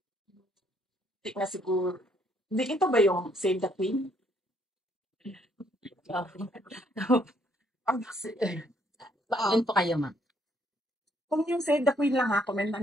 hindi na siguro. Hindi, ito ba yung Save the Queen? Attend po kayo ma'am. Kung yung Save the Queen lang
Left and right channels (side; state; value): both; normal; correlation 0.68